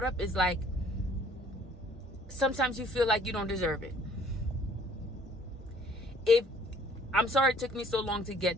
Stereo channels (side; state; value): both; normal; correlation 0.58